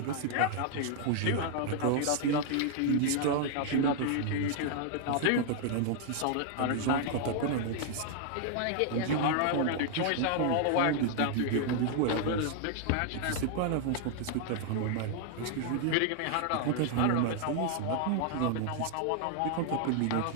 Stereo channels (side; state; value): both; different; correlation 0.00